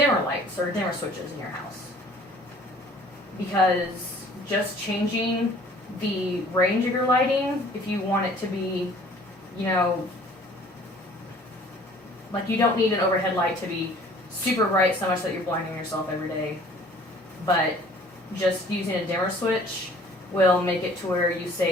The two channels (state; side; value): normal; both; correlation 0.53